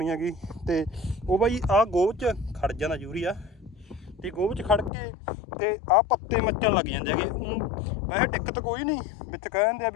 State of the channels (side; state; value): right; drops out; at 4.9 s